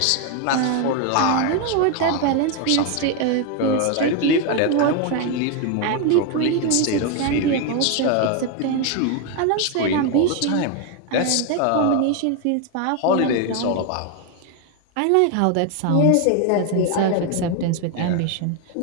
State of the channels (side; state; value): both; different; correlation 0.01